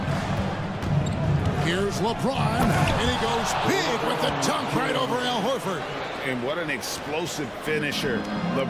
Here's LeBron, and he goes big with the dunk right over Al Horford. And what an explosive finisher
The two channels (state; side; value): identical; both; correlation 1.00